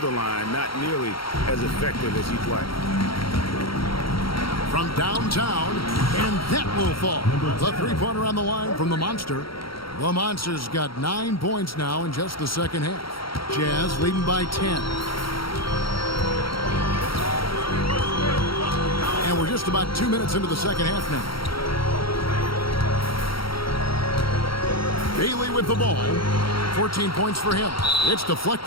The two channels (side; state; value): right; late; 0.74 ms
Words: line, not nearly as effective as he'd like. From downtown, and that will fall. The three-pointer on the line from the Monster. The Monster's got 9 points now in just the second half. Jazz leading by 10. And we're just about 2 minutes into the second half now. Bailey with the ball. 14 points for him. It's